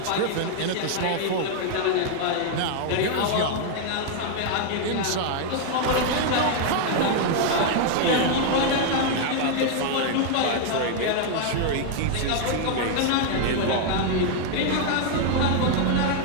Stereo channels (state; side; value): different; both; correlation 0.00